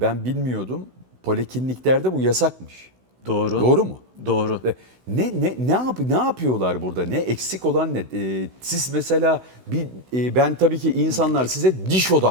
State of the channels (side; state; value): left; late; 16 ms